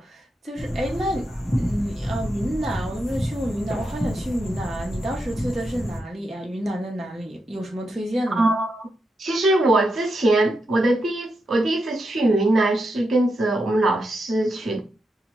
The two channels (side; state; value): both; normal; correlation 0.85